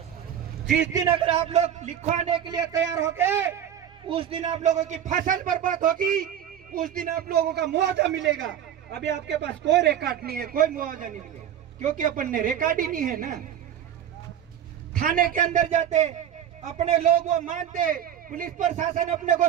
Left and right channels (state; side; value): quieter; left; 9.8 dB